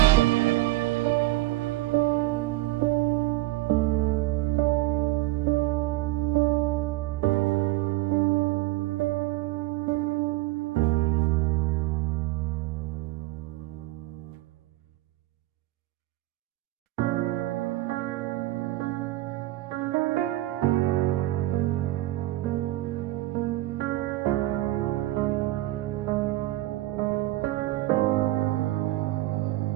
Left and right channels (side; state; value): left; quieter; 17.8 dB